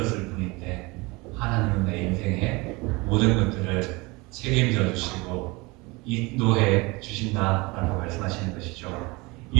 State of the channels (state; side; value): quieter; left; 24.7 dB